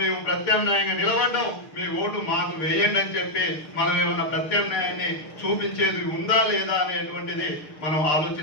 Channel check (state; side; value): late; right; 6.6 ms